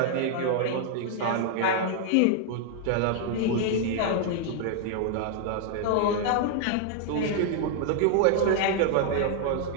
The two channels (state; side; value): different; both; correlation 0.00